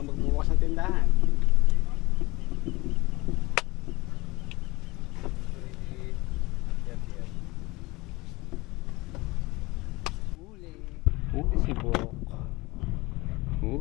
magbubukas ng tindahan. Huli. Huli si Bok.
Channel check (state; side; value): quieter; right; 22.4 dB